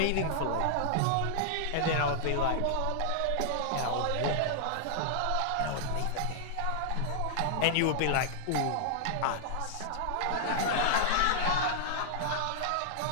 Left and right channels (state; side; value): different; both; correlation -0.01